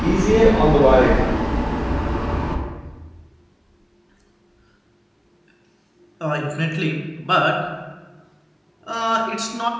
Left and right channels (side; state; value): both; identical; correlation 1.00